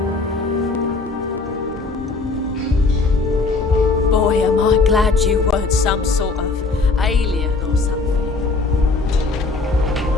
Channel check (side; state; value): right; quieter; 3.8 dB